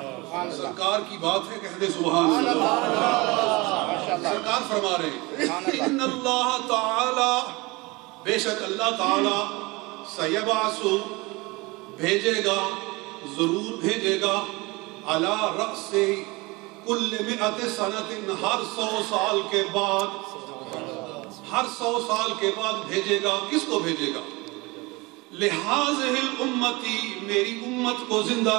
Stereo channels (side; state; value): left; quieter; 24.1 dB